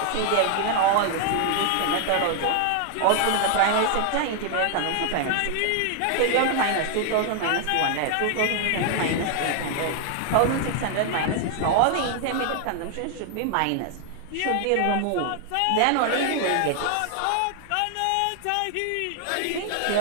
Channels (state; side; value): different; both; correlation 0.00